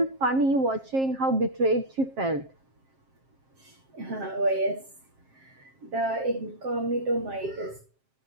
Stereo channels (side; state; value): left; late; 7.5 ms